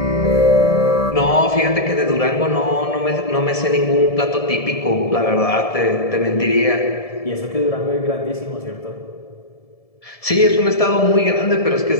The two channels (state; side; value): late; right; 1.7 ms